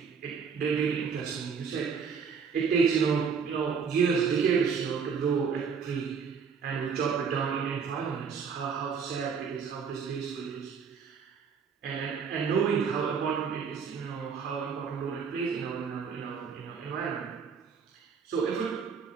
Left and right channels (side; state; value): left; quieter; 6.2 dB